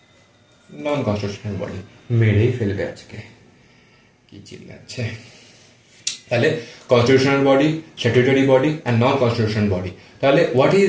নন কনস্টিটিউশনাল বডি। মেরেই ফেলবে আজকে, কি চিল্লাচ্ছে। তাহলে constitutional body, statutory body and non constitutional body. তাহলে হোয়াট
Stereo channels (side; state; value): both; identical; correlation 1.00